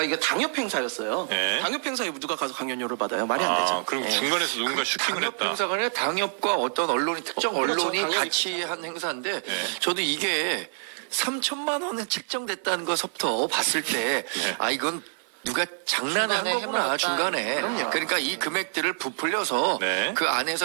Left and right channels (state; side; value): silent; left; 61 dB below the other